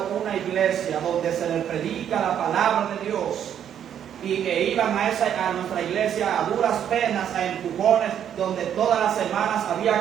una iglesia donde se les predica la palabra de Dios y que iban a nuestra iglesia a duras penas, a empujones, donde todas las semanas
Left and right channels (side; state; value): left; quieter; 9.4 dB